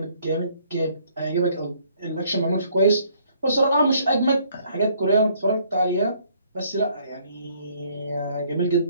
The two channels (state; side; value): inverted; both; correlation -0.64